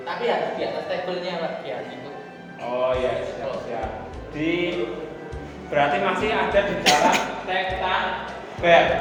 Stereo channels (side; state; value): both; identical; correlation 1.00